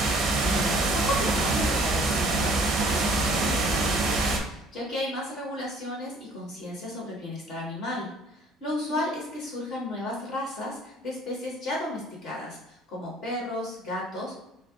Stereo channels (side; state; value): both; normal; correlation 0.56